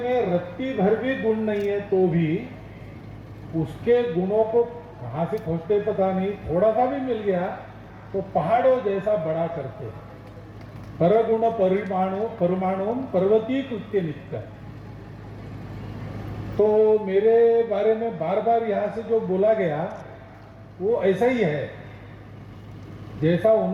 रत्ती भर भी गुण नहीं है तो भी उसके गुणों को कहां से खोजते पता नहीं, थोड़ा सा भी मिल गया तो पहाड़ों जैसा बड़ा करते। परगुण परमाणु पर्वतीय कृत्य नित्य। तो मेरे बारे में बार बार यहां से जो बोला गया वो ऐसा ही है, जैसा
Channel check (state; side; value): identical; both; correlation 1.00